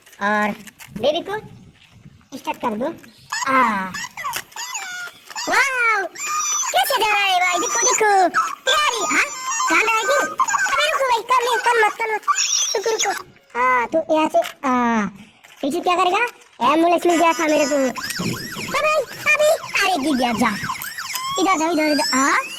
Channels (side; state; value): both; identical; correlation 1.00